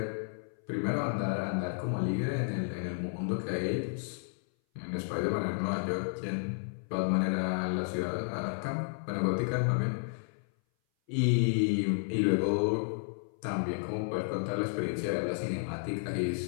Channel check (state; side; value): silent; right; 56 dB below the other